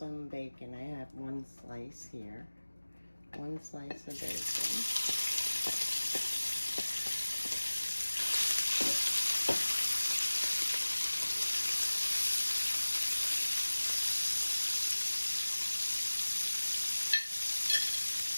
bacon. I have one slice here. One slice of bacon.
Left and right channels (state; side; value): inverted; both; correlation -1.00